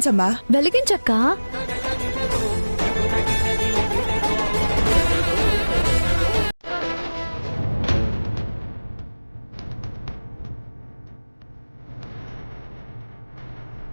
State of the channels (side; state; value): both; inverted; correlation -1.00